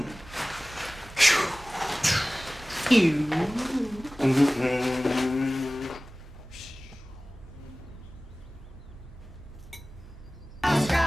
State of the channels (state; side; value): normal; both; correlation 0.98